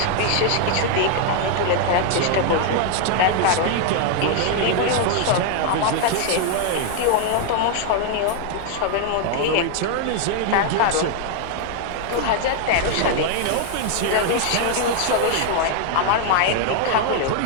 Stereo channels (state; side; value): different; both; correlation 0.00